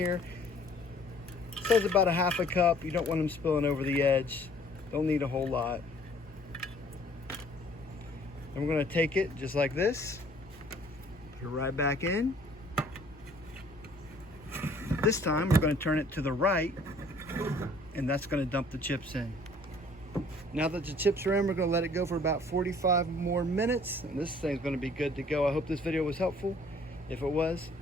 It says about a half a cup. You don't want them spilling over the edge. Don't need a whole lot. And we're going to take it just like this, put it right back in. This time we're going to turn it to the right, and that's going to dump the chips in. Now that the chips are in, we're going to let it go for about 45 more minutes, and this thing's going to be good to go. I hope this video was helpful. If it was,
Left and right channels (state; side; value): normal; both; correlation 0.56